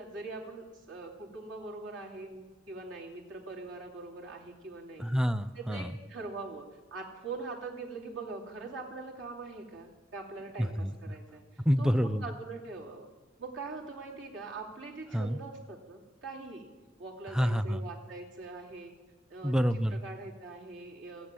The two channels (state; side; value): normal; both; correlation 0.86